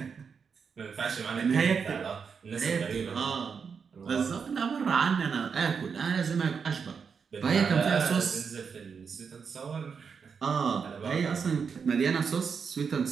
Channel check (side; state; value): left; quieter; 6.1 dB